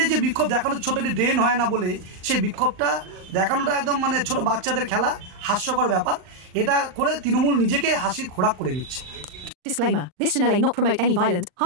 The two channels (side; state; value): left; late; 39 ms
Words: যে বিক্ষোভ দেখানোর, ছোট একটি ড্রেন হয় না বলে সেই বিক্ষোভটা দেখানোটা একদম ছোট বাচ্চাদের খেলা, হাস্যকর ব্যাপার। এটা করে তৃণমূল নিজেকে হাসির খোরাক করে নিচ্ছে। Disclaimer. This channel may not promote any violent,